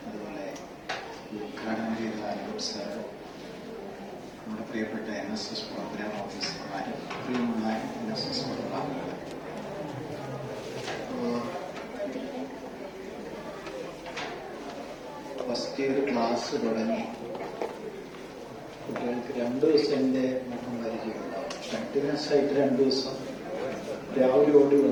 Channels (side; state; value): both; identical; correlation 1.00